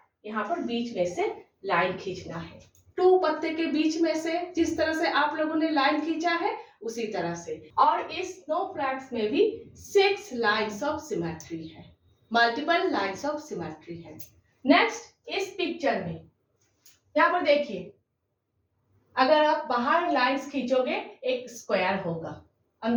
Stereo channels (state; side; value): identical; both; correlation 1.00